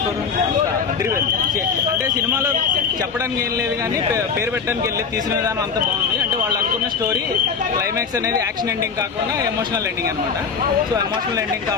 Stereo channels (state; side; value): quieter; right; 5.9 dB